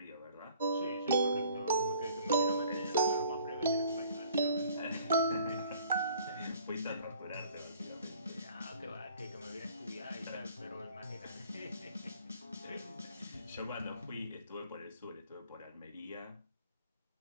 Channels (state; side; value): inverted; both; correlation -0.55